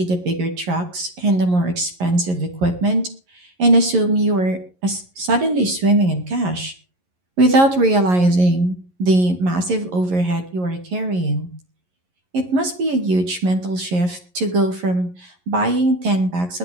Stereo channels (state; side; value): late; left; 11 ms